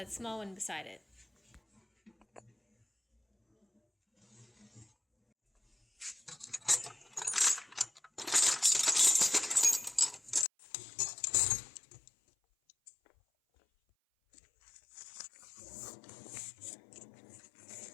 small one beside it.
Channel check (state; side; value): drops out; right; at 10.5 s